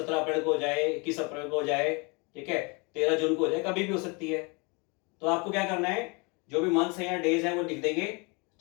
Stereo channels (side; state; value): right; quieter; 30.3 dB